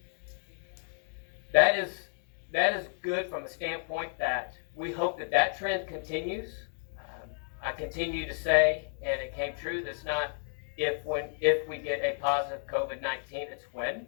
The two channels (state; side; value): silent; right; digital silence